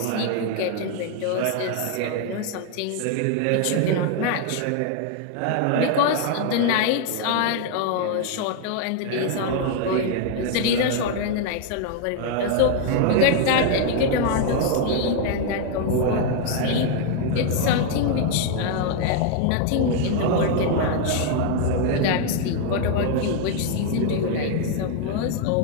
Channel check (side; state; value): both; different; correlation 0.00